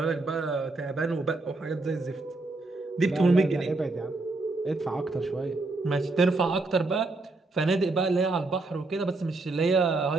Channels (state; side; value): quieter; left; 3.2 dB